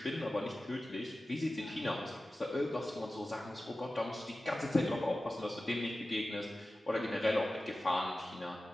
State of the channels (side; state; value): both; normal; correlation 0.95